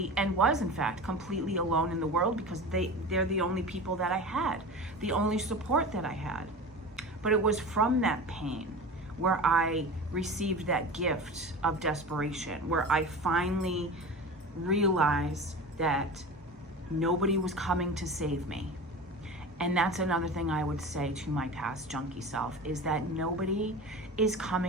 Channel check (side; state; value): both; normal; correlation 0.32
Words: and was in fact completely alone in the world because they're the only people that I had, the only support that I had. But it was from that pain where I received that gift of desperation, where I finally realized that nobody was coming to save me. And that's another thing I would say to my past junkie self, is that nobody is